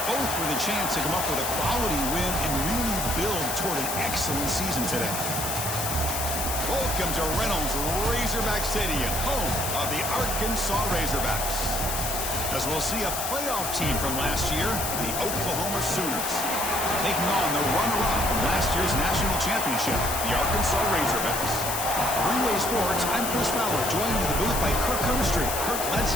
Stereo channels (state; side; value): noise; left; hiss, 3 dB below the sound